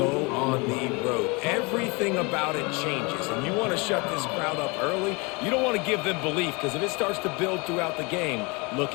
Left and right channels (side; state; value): right; quieter; 28.2 dB